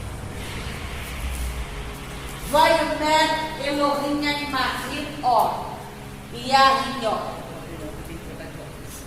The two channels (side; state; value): both; identical; correlation 1.00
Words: Vaiomer Elohim Animachim Or Yahinho.